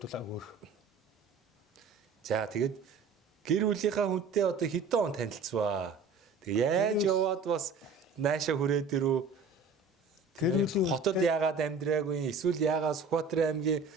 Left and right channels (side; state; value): left; quieter; 4.5 dB